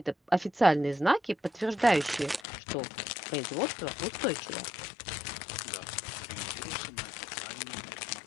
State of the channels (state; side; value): drops out; right; at 2.4 s